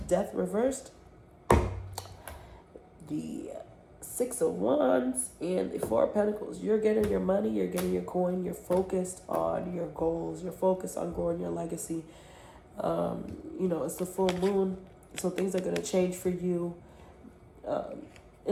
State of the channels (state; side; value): identical; both; correlation 1.00